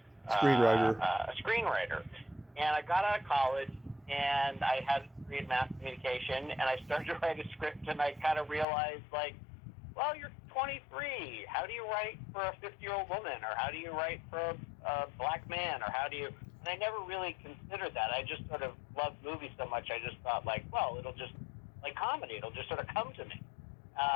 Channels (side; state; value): right; drops out; at 8.7 s